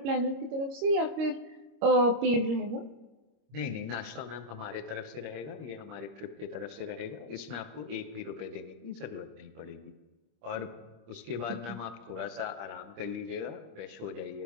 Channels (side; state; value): left; late; 26 ms